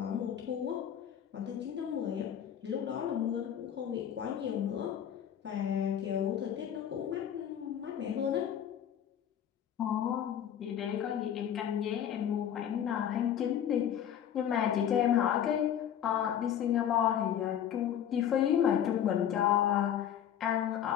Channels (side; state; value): right; quieter; 9.6 dB